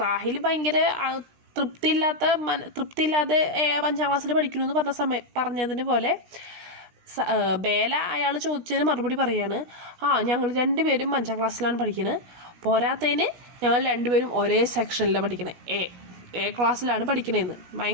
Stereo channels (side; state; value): left; late; 17 ms